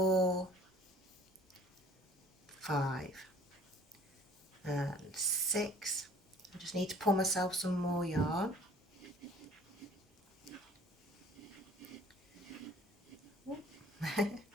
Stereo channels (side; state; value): both; normal; correlation 0.53